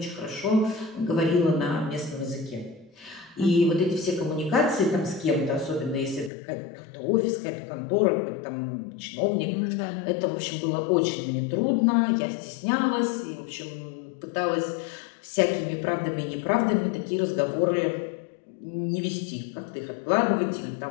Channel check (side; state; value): right; drops out; at 6.3 s